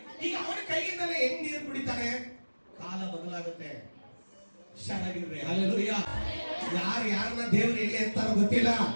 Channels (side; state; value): both; inverted; correlation -1.00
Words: ಈಗ ಅವನ ಕೈಯಿಂದಲೇ ಹೆಂಗ್ ನೀರು ಕುಡಿತಾನೆ? ಕಾಲ ಬದಲಾಗುತ್ತೆ. ಹುಷಾರಾಗಿರ್ರಿ. ಹಲ್ಲೆಲೂಯಾ. ಯಾರನ್ನ ದೇವ್ರು ಎಲ್ಲಿ ಅಂತಾರೋ ಗೊತ್ತಿಲ್ಲ.